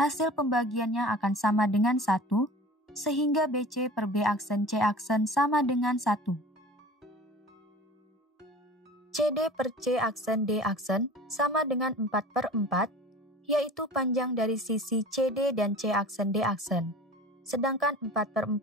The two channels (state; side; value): normal; both; correlation 0.40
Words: pembagiannya akan sama dengan 1, sehingga BC per B aksen C aksen sama dengan 1. CD per C aksen D aksen sama dengan 4/4, yaitu panjang dari sisi CD dan C aksen D aksen, sedangkan